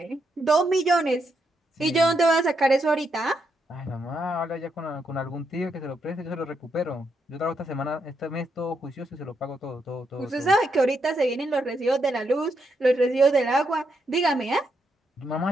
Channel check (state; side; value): normal; both; correlation 0.80